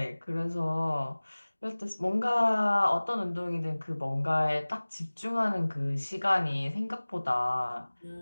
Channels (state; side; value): inverted; both; correlation -1.00